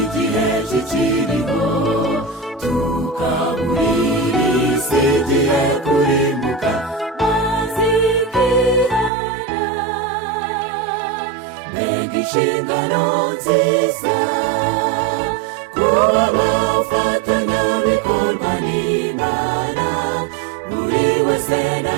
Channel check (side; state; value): left; drops out; at 9.1 s